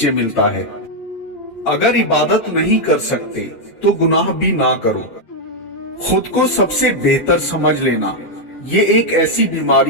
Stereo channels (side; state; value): right; late; 8.9 ms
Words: ملتا ہے۔ اگر عبادت نہیں کر سکتے تو گناہ بھی نہ کرو۔ خود کو سب سے بہتر سمجھ لینا یہ ایک ایسی